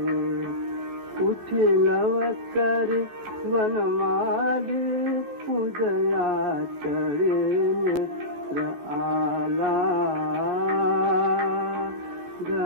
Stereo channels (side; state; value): left; late; 14 ms